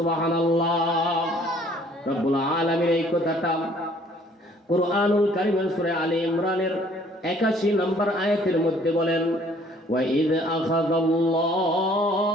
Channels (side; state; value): both; normal; correlation 0.58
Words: রব্বুল আলামিন এই কথাটা কুরআনুল কারীমের সূরা আলে ইমরানের ৮১ নম্বর আয়াতের মধ্যে বলেন وَإِذْ أَخَذَ